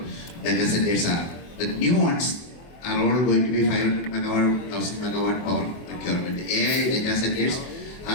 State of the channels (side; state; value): right; late; 24 ms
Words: data centers are. The new ones are all going to be 500 megawatt, 1000 megawatt power procurement. AI data centers